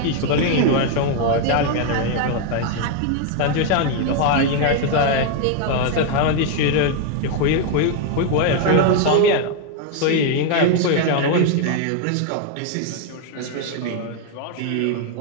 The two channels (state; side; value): different; both; correlation 0.01